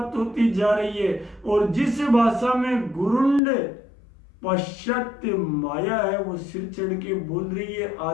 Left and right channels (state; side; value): drops out; right; at 3.4 s